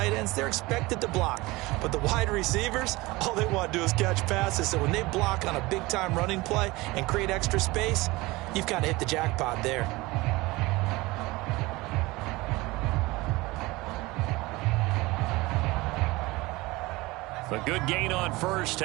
ends, they're expected to block. But the wide receivers, all they want to do is catch passes. So when they block on a big-time running play and create extra space, you've kind of hit the jackpot there. A good gain on first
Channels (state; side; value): quieter; left; 21.5 dB